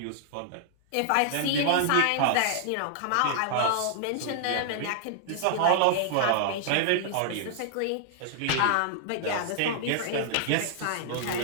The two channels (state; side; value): different; both; correlation -0.01